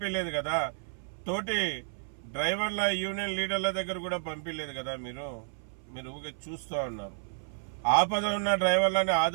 కదా, తోటి డ్రైవర్ల యూనియన్ లీడర్ల దగ్గర కూడా పంపించలేదు కదా. మీరు ఊరికే చూస్తూ ఉన్నారు. ఆపద ఉన్న డ్రైవర్లని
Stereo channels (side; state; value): left; silent; 57 dB below the other